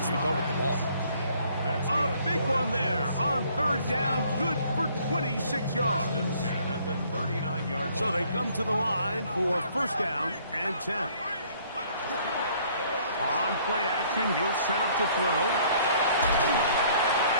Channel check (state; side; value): inverted; both; correlation -0.60